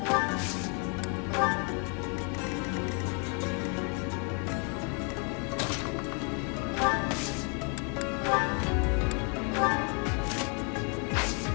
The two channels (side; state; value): right; quieter; 37.0 dB